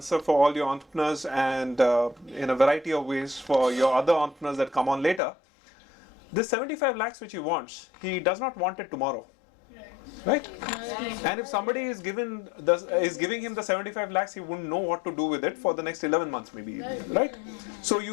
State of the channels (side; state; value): right; drops out; at 5.2 s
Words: for all your entrepreneurs and in a variety of ways for your other entrepreneurs that come on later. This 75 lakhs which he wants, he does not want it tomorrow, right? And if somebody is giving him the 75 lakhs, he wouldn't know what to do with it for the next 11 months maybe, right? So